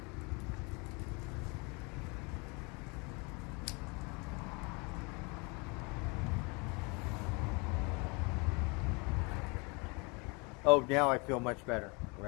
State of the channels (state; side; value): quieter; right; 30.1 dB